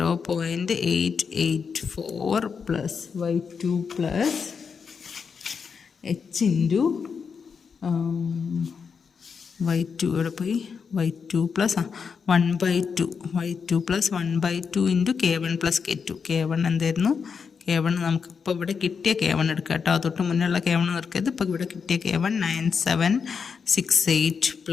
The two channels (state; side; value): quieter; right; 6.0 dB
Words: plus y2 plus h into y2 ഇവിടെ പോയി y2 plus 1/2 y2 plus 1/2 into K1 plus K1 എന്തായിരുന്നു? K1 നമുക്കിപ്പോൾ ഇവിടെ കിട്ടിയ K1 എടുക്കുക കേട്ടോ. തൊട്ട് മുന്നുള്ള K1 എടുക്കരുത്. ഇപ്പോൾ ഇവിടെ കിട്ടിയ K1 9768